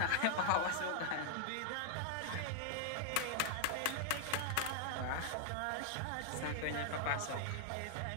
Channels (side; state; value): both; different; correlation 0.00